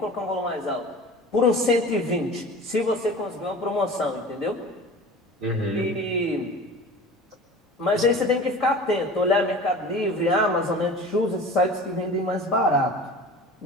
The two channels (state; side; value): normal; both; correlation 0.38